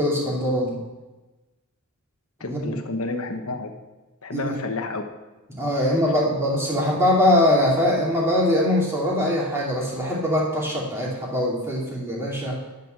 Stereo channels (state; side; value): normal; both; correlation 0.28